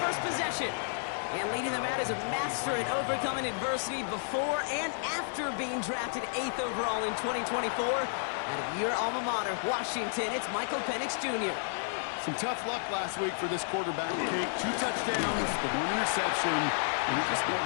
possession. And leading them out is a master at overcoming adversity before and after being drafted 8th overall in 2024. Out of your alma mater, Washington, it's Michael Penix Jr. Some tough luck last week for this quarterback, Kate. 2 touchdowns, the 1 interception, and it just got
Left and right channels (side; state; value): right; silent; 57 dB below the other